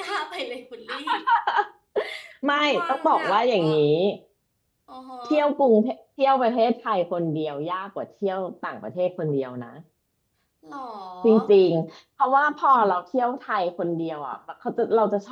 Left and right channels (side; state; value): both; identical; correlation 1.00